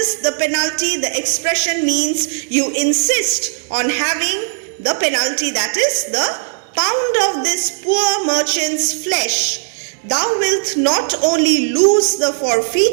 the expression means you insist on having the penalty, that is the pound of this poor merchant's flesh. Thou wilt not only lose the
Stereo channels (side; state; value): left; silent; digital silence